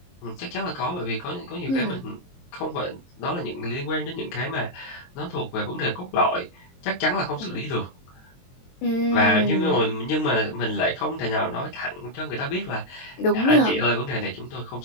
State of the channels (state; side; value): late; right; 22 ms